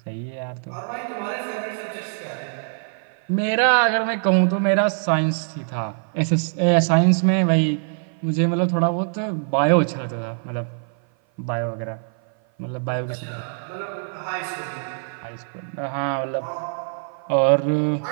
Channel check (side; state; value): left; silent; 55 dB below the other